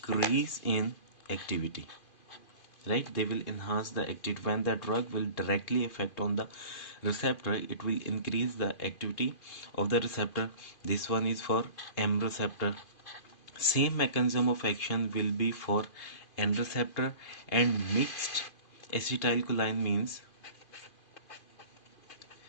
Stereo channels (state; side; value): late; right; 2.5 ms